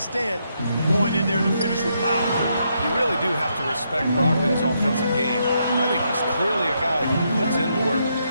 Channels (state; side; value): inverted; both; correlation -0.78